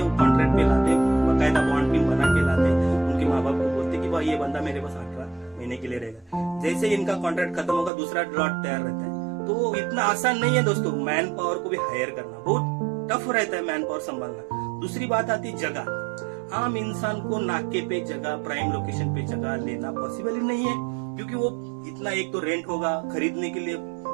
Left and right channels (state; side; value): drops out; left; at 7.9 s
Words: वो कॉन्ट्रैक्ट पे लाते, बकायदा बॉन्ड भी बना के लाते। उनके माँ बाप को बोलते कि भाई ये बंदा मेरे पास 18 महीने के लिए रहेगा। जैसे इनका कॉन्ट्रैक्ट खत्म होगा, दूसरा लॉट तैयार रहता है। तो इतना आसान नहीं है दोस्तों, मैन पावर को भी हायर करना बहुत टफ रहता है, मैन पावर संभालना। दूसरी बात आती जगह। आम इंसान को नाके पे जगह, प्राइम लोकेशन पे जगह लेना पॉसिबल ही नहीं है, क्योंकि वो इतना, एक तो रेंट होगा, खरीदने के लिए